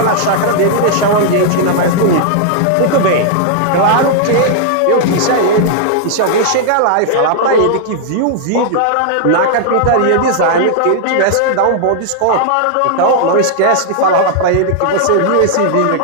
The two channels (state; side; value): different; both; correlation -0.01